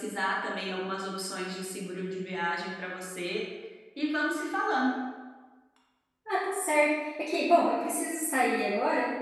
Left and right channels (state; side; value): identical; both; correlation 1.00